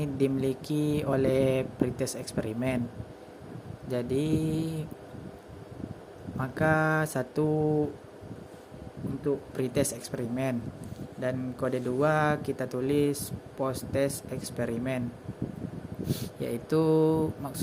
dimiliki oleh pretest eksperimen. Jadi maka 1 untuk pretest eksperimen, dan kode 2 kita tulis post test eksperimen, yaitu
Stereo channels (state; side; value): identical; both; correlation 1.00